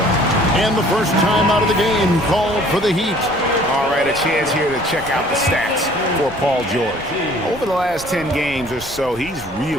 And the first time out of the game called for the Heat. All right, a chance here to check out the stats for Paul George. Over the last 10 games or so, he's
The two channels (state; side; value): noise; right; rumble, 18 dB below the sound